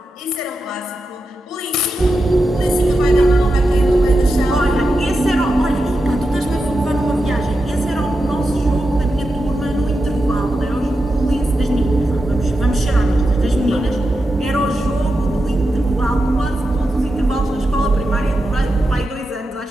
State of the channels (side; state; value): both; normal; correlation 0.89